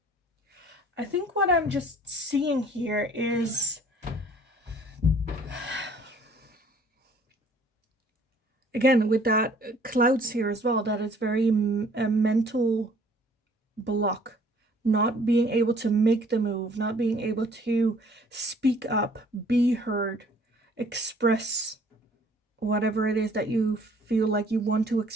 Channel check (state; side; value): normal; both; correlation 0.56